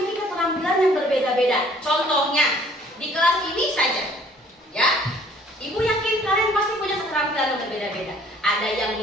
keterampilan yang berbeda-beda. Contohnya di kelas ini saja, ya. Ibu yakin kalian pasti punya keterampilan yang berbeda-beda. Ada yang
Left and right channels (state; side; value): normal; both; correlation 0.57